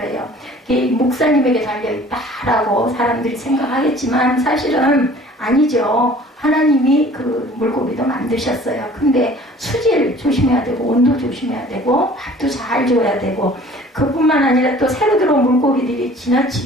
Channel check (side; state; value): both; normal; correlation 0.49